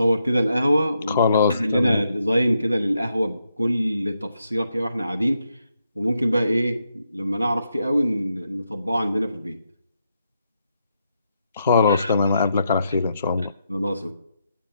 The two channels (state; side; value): inverted; both; correlation -0.81